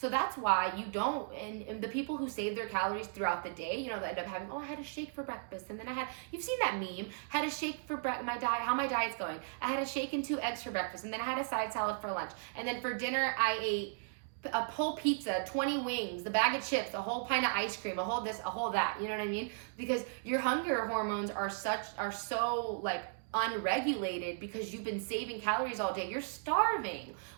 that's why you don't, and the people who save their calories throughout the day, they end up having, I had a shake for breakfast, and then you've seen that meme, had a shake for how my diet's going. I had a shake and 2 eggs for breakfast, and then I had a side salad for lunch. And then for dinner, I ate a whole pizza, 20 wings, the bag of chips, a whole pint of ice cream, a whole this, a whole that, you know what I mean? Because your hunger hormones are so unregulated because you've been saving calories all day. You're starving.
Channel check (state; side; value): silent; left; digital silence